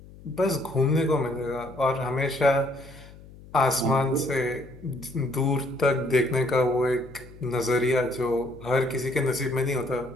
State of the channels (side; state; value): left; noise; hum, 20 dB below the sound